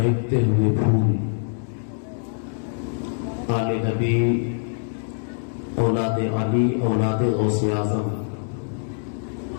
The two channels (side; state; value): right; silent; digital silence